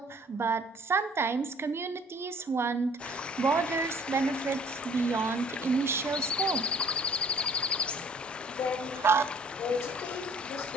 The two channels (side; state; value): both; normal; correlation 0.56